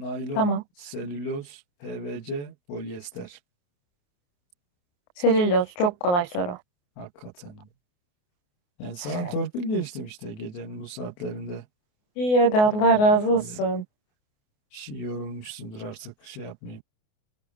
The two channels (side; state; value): right; late; 28 ms